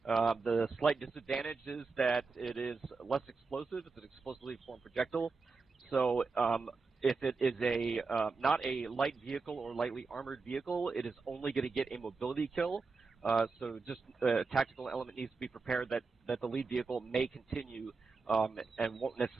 The slight disadvantage is that it is less explosive. It's an explosively formed projectile. So if it is not a light vehicle or lightly armored vehicle, it is only going to get a mobility kill. So just a tactical element needs to be prepared that the lead vehicle may continue and won't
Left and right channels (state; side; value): quieter; left; 4.3 dB